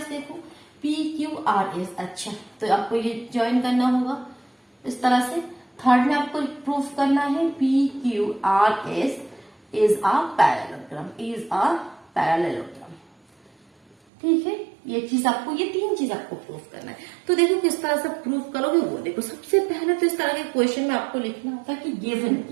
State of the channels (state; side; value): drops out; left; at 14.0 s